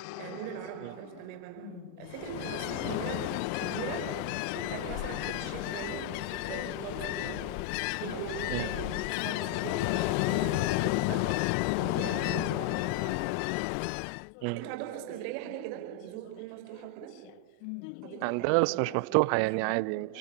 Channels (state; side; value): different; both; correlation 0.00